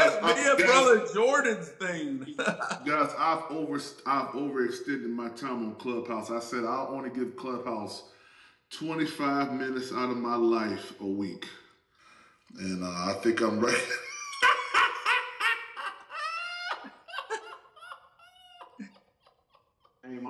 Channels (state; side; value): identical; both; correlation 1.00